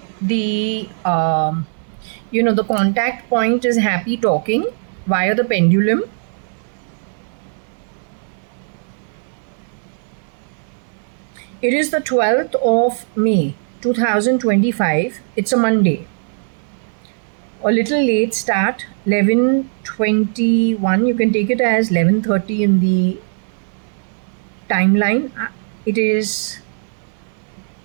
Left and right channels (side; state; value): left; silent; digital silence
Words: the contact point is happy talking via the pendulum. It is the 12th of May 2025. It's a Monday. A little late start, 11:21. You can take it as 11:30 in the timeline. It is